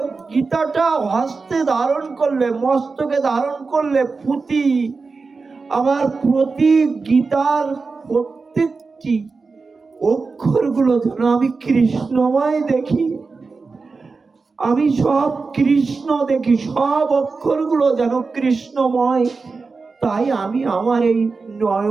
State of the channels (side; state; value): left; quieter; 4.3 dB